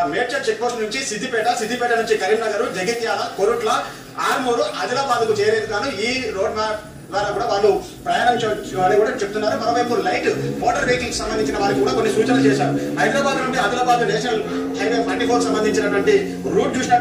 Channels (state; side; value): identical; both; correlation 1.00